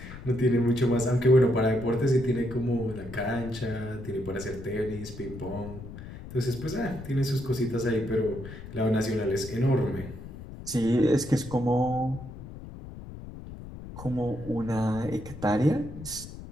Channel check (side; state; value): left; noise; rumble, 13 dB below the sound